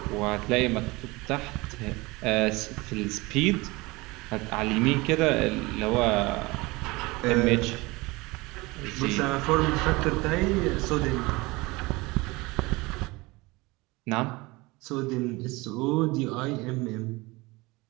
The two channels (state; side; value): quieter; left; 23.0 dB